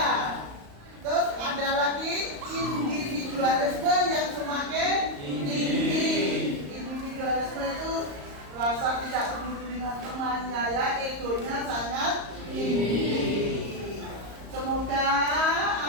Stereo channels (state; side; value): late; left; 35 ms